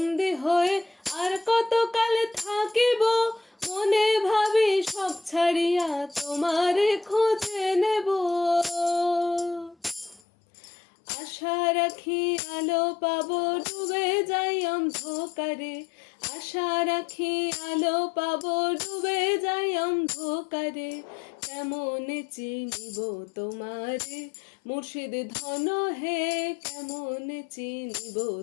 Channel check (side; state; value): right; drops out; at 10.2 s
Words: হয়ে আর কত কাল থাকিব। মনে ভাবি সব ছাড়িয়া তোমারে খুঁজে নেব। আশা রাখি আলো পাবো, ডুবে যাই অন্ধকারে। আশা রাখি আলো পাবো, ডুবে যাই অন্ধকারে। কেমন চিনিব তোমারে মুর্শিদ ধন হে, কেমন চিনিব